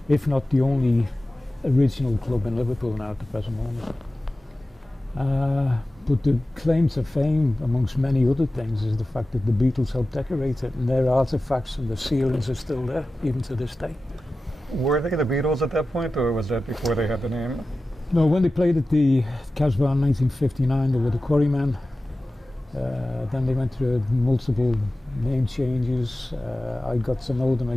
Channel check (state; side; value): normal; both; correlation 0.95